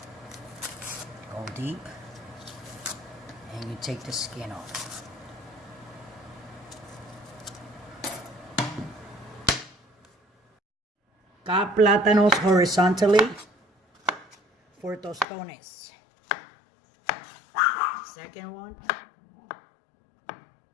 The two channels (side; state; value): right; drops out; at 15.2 s